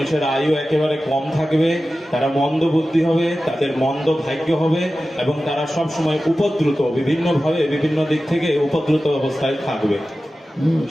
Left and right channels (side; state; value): both; normal; correlation 0.94